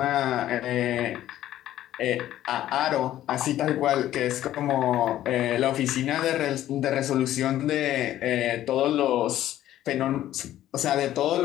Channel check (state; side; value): quieter; right; 13.0 dB